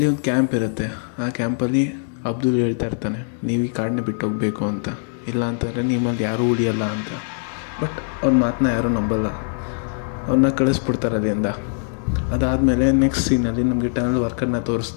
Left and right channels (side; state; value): right; silent; digital silence